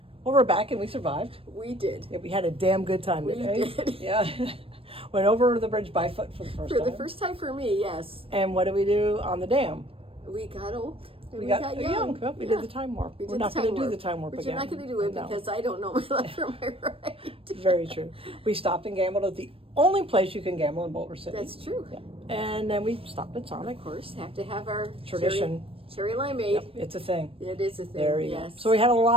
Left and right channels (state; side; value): late; left; 0.27 ms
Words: Well, we're back and we survived. We did. Yeah, we had a damn good time We today. did. Yeah. Went over the bridge by foot for the first For time. the first time for me, yes. And what did we do on the dam? We got old. And We got young. Well, we did the time warp. We're not going to do the time warp But again. you're not going to do it No. because I don't know my left from my right. Very true. We stopped and gambled at the only place you can gamble in Boulder City. That's true. Yeah. And then we stopped at Sonic. Of course, have to have our Tradition. cherry limeade. Yep, it's a thing. It is a thing. There you yes. go. So we had a